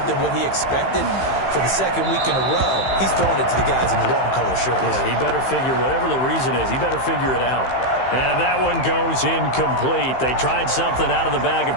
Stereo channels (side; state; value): right; late; 15 ms